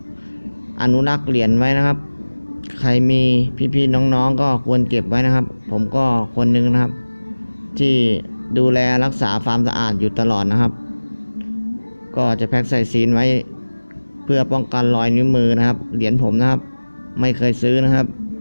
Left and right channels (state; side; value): inverted; both; correlation -1.00